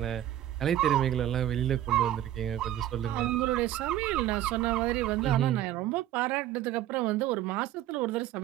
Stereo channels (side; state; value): left; quieter; 12.7 dB